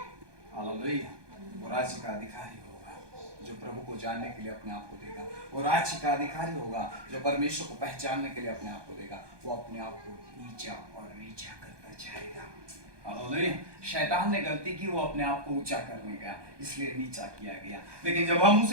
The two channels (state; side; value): late; left; 1.2 ms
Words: हालेलुया। वो राज्य का अधिकारी होगा जो प्रभु को जानने के लिए अपने आप को देगा। वो राज्य का अधिकारी होगा जो परमेश्वर को पहचानने के लिए अपने आप को देगा। वो अपने आप को नीचा और नीचा करता जाएगा। हालेलुया। शैतान ने गलती की, वो अपने आप को ऊंचा करने का, इसलिए नीचा किया गया। लेकिन जब हम